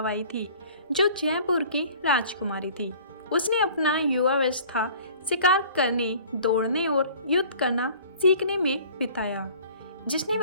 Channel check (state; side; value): inverted; both; correlation -0.49